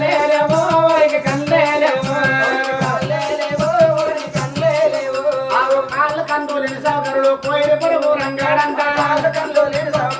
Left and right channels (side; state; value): both; identical; correlation 1.00